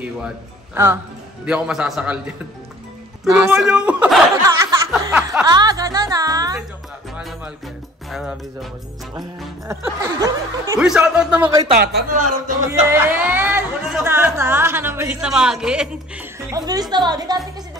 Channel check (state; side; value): normal; both; correlation 0.50